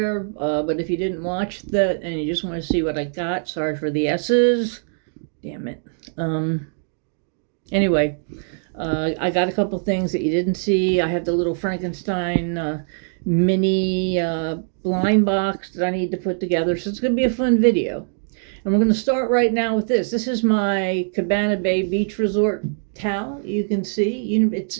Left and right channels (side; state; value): left; silent; digital silence